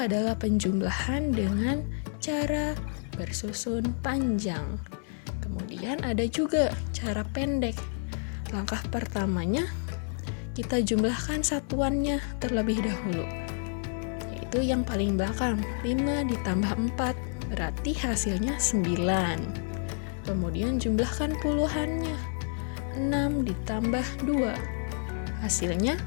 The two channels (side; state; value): right; silent; 58 dB below the other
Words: penjumlahan dengan cara bersusun panjang. Kemudian ada juga cara pendek. Langkah pertamanya, kita jumlahkan satuannya terlebih dahulu, yaitu yang paling belakang, 5 ditambah 4, berarti hasilnya 9. Kemudian jumlahkan puluhannya, 6 ditambah 2, hasilnya